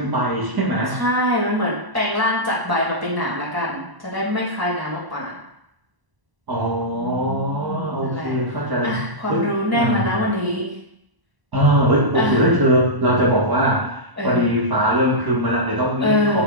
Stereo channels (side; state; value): left; late; 1.0 ms